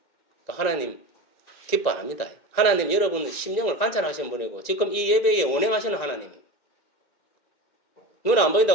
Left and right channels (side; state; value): right; late; 1.9 ms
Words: 그러니까 하나님 기뻐 안 합니다. 하나님 여러분 심령을 관찰하시는 분이고 지금 이 예배에 운행하시는 하나님 눈 안